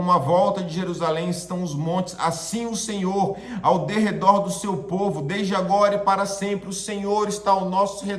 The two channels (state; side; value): identical; both; correlation 1.00